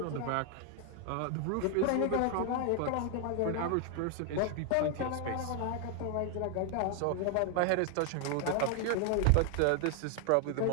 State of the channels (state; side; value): different; both; correlation 0.00